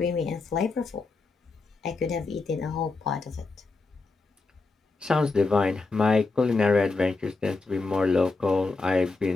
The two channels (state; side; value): quieter; right; 3.7 dB